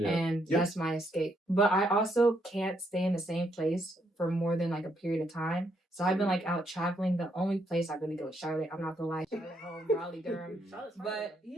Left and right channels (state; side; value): normal; both; correlation 0.75